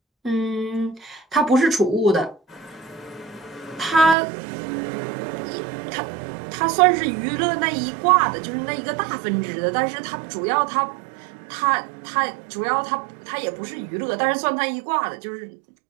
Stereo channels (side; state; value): left; drops out; at 4.2 s